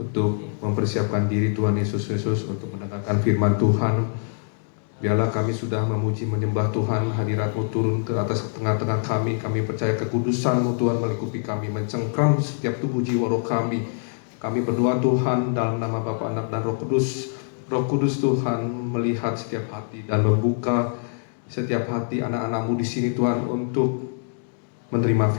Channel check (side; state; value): right; silent; digital silence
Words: untuk mempersiapkan diri Tuhan Yesus Kristus untuk mendengarkan firman Tuhan. Biarlah kami sudah memuji menyembah Tuhan, hadirat-Mu turun ke atas tengah-tengah kami. Kami percaya kekudusan-Mu Tuhan melingkupi kami, mencengkram setiap tubuh jiwa roh kami. Kami berdoa Tuhan dalam nama Bapa, Anak dan Roh Kudus. Roh Kudus Tuhan melihat setiap hati dan membuka setiap hati anak-anak-Mu di sini Tuhan untuk menerima